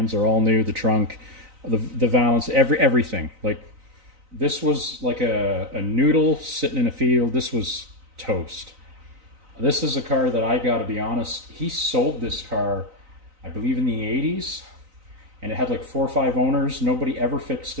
are all new, the trunk, the valance, everything. Like, this was like a noodle sitting in a field. This was toast. This is a car that, I got to be honest, he sold this car, I believe, in the 80s. And it had like 4 or 5 owners. Nobody ever fixed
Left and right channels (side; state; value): left; late; 3.9 ms